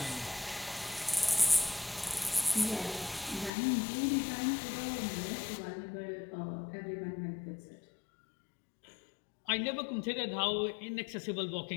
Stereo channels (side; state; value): right; drops out; at 3.5 s